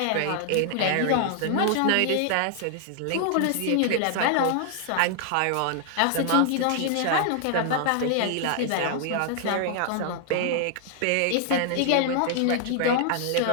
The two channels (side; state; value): both; different; correlation 0.00